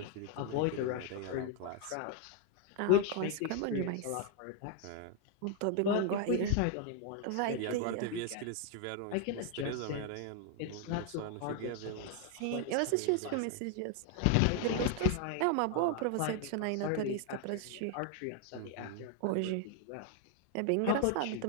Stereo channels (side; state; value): both; different; correlation 0.00